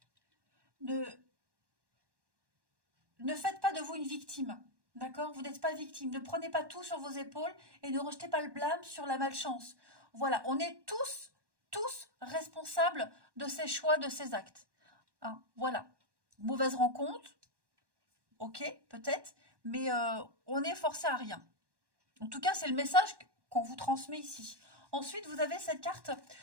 Ne, Ne faites pas de vous une victime. D'accord? Vous n'êtes pas victime. Ne prenez pas tout sur vos épaules et ne rejetez pas le blâme sur la malchance. Voilà, on est tous responsables de ces choix, de ces actes. Hein, voilà. Mauvaise rencontre, ok, peut-être, mais on n'est forcé à rien. En tout cas, c'est le message qu'on vous transmet ici. Ensuite, vous avez cette carte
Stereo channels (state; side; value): late; left; 1.1 ms